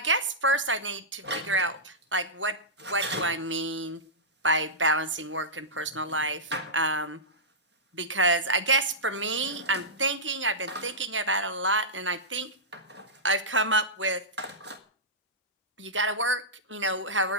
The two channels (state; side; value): normal; both; correlation -0.14